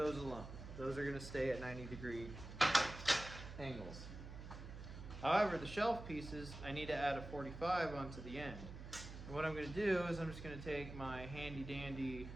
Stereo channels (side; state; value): right; noise; hum, 10 dB below the sound